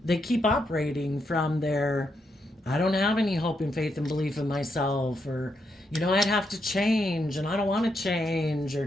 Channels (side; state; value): both; normal; correlation 0.80